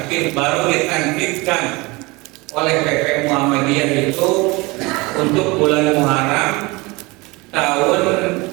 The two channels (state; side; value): quieter; left; 24.5 dB